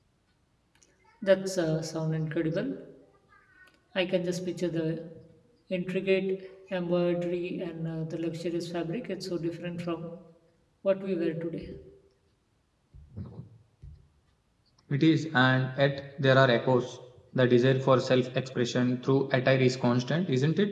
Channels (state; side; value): identical; both; correlation 1.00